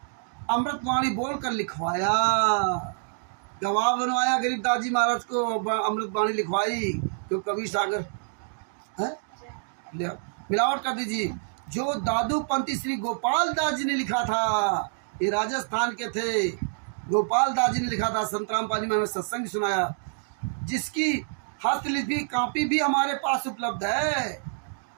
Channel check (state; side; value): silent; left; digital silence